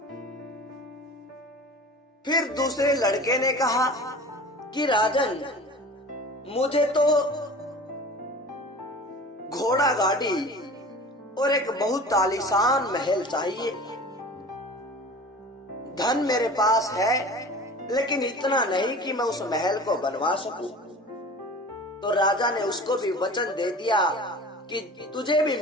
फिर दूसरे लड़के ने कहा कि राजन, मुझे तो घोड़ा गाड़ी और एक बहुत आलीशान महल चाहिए। धन मेरे पास है, लेकिन इतना नहीं कि मैं उस महल को बनवा सकूं। तो राजा ने उसको भी वचन दे दिया कि तुझे भी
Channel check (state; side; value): normal; both; correlation 0.39